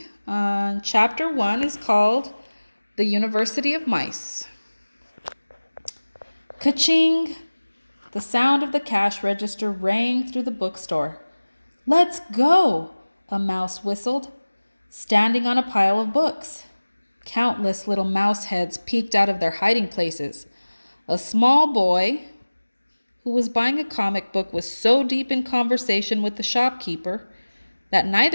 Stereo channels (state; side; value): inverted; both; correlation -1.00